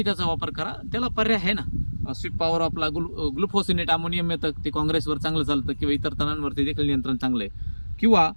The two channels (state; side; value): inverted; both; correlation -1.00